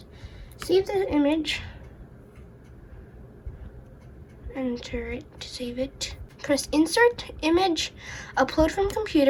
save the image, enter it to save it, press insert image, upload from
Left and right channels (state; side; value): identical; both; correlation 1.00